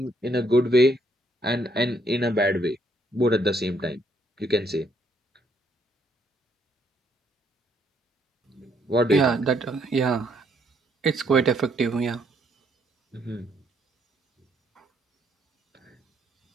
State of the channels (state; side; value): normal; both; correlation 0.70